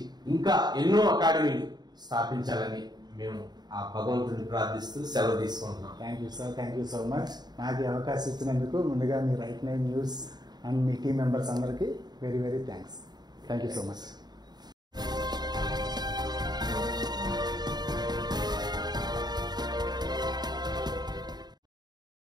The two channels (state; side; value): late; left; 0.20 ms